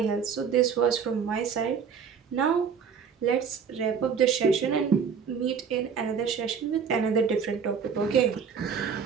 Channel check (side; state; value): left; quieter; 6.6 dB